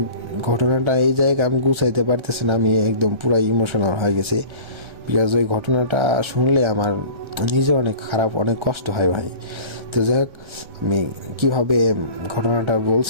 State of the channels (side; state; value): left; late; 1.3 ms